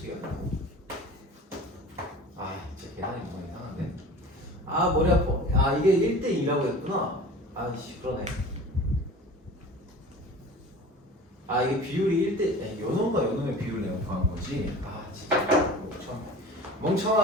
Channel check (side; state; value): both; normal; correlation 0.40